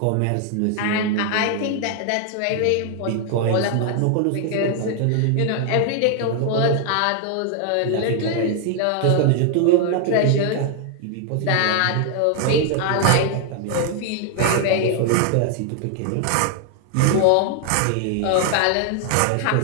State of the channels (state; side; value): different; both; correlation 0.00